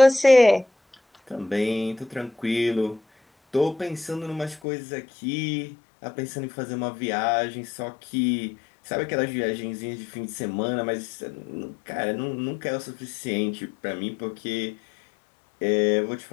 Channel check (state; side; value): drops out; right; at 4.6 s